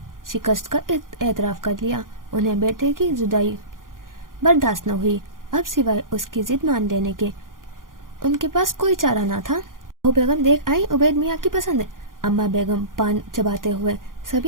शिकस्त का एतराफ़ कर लिया। उन्हें बेटे की जुदाई बर्दाश्त न हुई। अब सिवाय उसकी जिद मान लेने के उनके पास कोई चारा ना था। वो बेगम देख आई उबैद मियाँ की पसंद। अम्मा बेगम पान चबाते हुए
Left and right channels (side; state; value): left; late; 0.90 ms